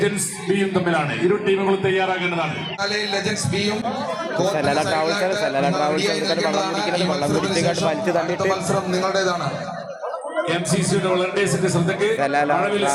ബിയും തമ്മിലാണ്. ഇരു ടീമുകളും തയ്യാറാകേണ്ടതാണ്. ലെജൻസ് ബിയും മത്സരം നിങ്ങളുടേതാണ്. MCCയുടെ വളണ്ടിയേഴ്സിന്റെ ശ്രദ്ധയ്ക്ക് മഴവിൽ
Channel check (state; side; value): identical; both; correlation 1.00